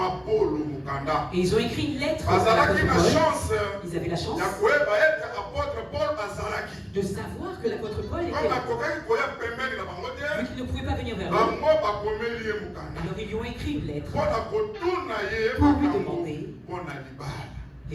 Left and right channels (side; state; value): both; identical; correlation 1.00